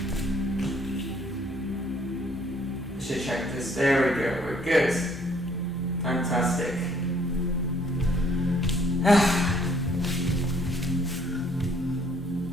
I should check this. There we go. We're good. Fantastic.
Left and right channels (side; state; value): both; normal; correlation 0.63